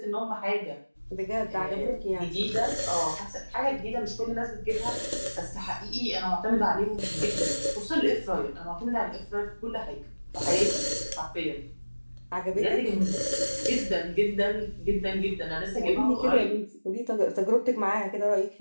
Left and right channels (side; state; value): both; inverted; correlation -1.00